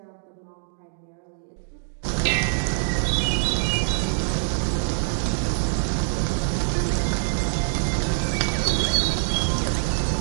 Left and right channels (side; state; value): left; silent; digital silence